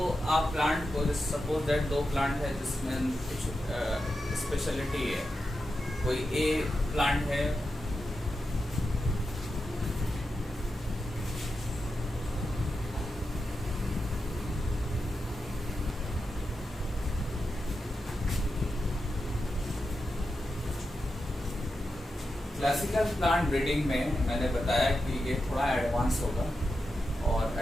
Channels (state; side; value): normal; both; correlation 0.89